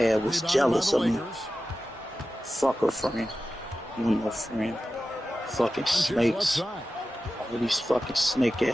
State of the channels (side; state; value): both; normal; correlation 0.94